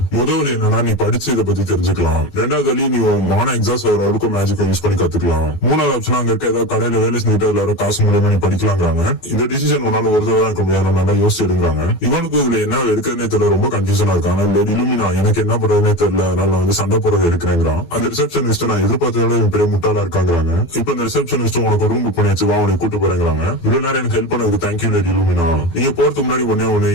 முதல் என்னன்னா நீ படிச்சு இதை பத்தி தெரிஞ்சுக்கலாம். ரெண்டாவது வழி நீ மான எக்ஸாஸ்ட் வர வரைக்கும் மேஜிக்கை யூஸ் பண்ணி கத்துக்கலாம். மூணாவது ஆப்ஷன் அங்க இருக்க ஏதாவது கடையில வேலை செஞ்சுட்டு அதுல வர காசு மூலமா நீ படிக்கலாங்கிறாங்க. இந்த டிசிஷன் உன்னால ஒரு தடவை இருக்க முடியாது, நல்லா யோசிச்சு எடுங்கிறாங்க. இவனுக்கு இதுல என்ன எடுக்கிறதே தெரியல, ரொம்ப கன்ஃபியூஷனா இருக்கான். இலுமினா எனக்கு என்ன பண்றதுனே தெரியல, அதனால வந்து சண்டை போறது எடுக்கிறேங்கிறான். அந்த ரிசப்ஷனிஸ்ட் நான் எதிர்பார்த்ததோட பெரிய முட்டாளா இருக்காங்கிறாங்க. இப்ப இந்த ரிசப்ஷனிஸ்ட் உனக்கு ரூம் புக் பண்ணியாச்சு, வா உனக்கு கூட்டு போறேங்கிறாங்க. இவ்வளவு நேரம் எனக்கு ஹெல்ப் பண்ணதுக்கு தேங்க்யூ லேடி இலுமினா. நீங்க போறதுக்கு முன்னாடி ஒண்ணு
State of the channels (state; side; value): late; right; 12 ms